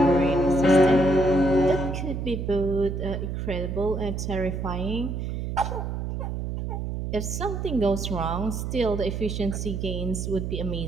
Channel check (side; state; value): right; noise; hum, 4 dB below the sound